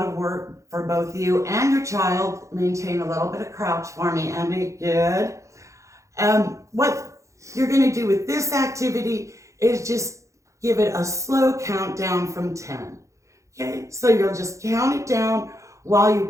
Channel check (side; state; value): left; late; 0.15 ms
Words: of work for both you and your child, maintain a little bit of crouch for me, Andy. Good. What you're going to do with this activity is just give it a slow countdown from 10. Okay, so you'll just count it down while